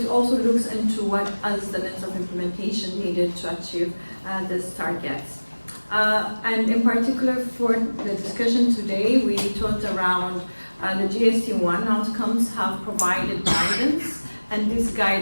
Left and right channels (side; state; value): both; inverted; correlation -1.00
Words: also looks into what is the lens of implementation needed to achieve these targets. And in particular for the discussion today, we talked around the GST1 outcomes have provided guidance, and this